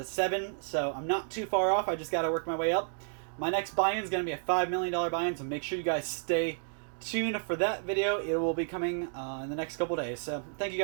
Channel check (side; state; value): left; silent; digital silence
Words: 7, so I'm not too far off. I just got to work my way up. My next buy-in is going to be a $5 million buy-in, so make sure you guys stay tuned for that video. It will be coming in the next couple days. So thank you